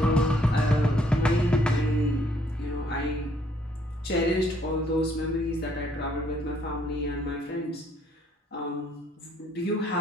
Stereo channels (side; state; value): both; normal; correlation 0.66